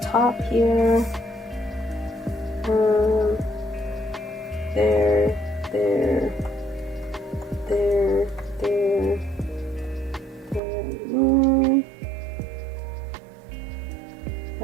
top here. There, there, there, there, there.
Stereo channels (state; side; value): drops out; left; at 10.6 s